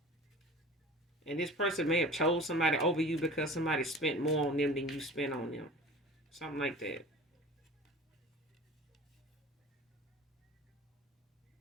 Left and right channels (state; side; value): normal; both; correlation 0.40